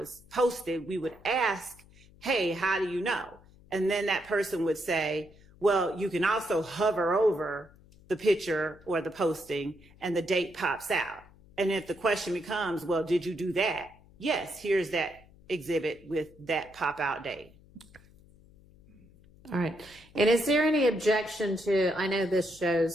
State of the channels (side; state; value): left; noise; hum, 25 dB below the sound